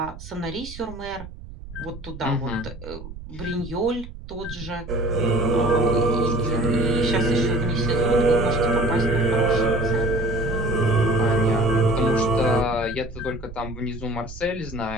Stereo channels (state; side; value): noise; right; rumble, 14 dB below the sound